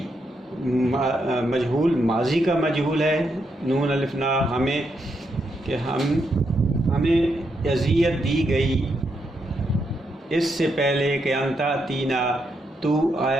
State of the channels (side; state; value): both; normal; correlation 0.80